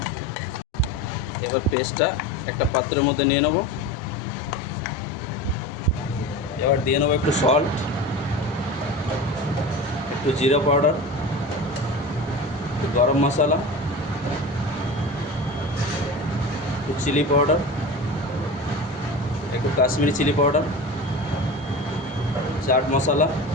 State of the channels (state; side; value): normal; both; correlation 0.31